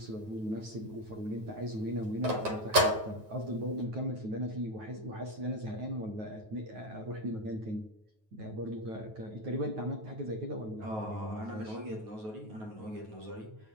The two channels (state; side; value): late; left; 9.3 ms